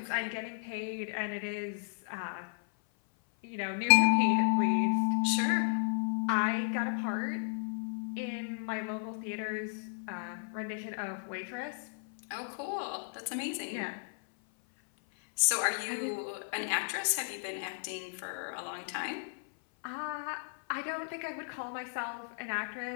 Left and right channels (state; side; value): silent; right; 55 dB below the other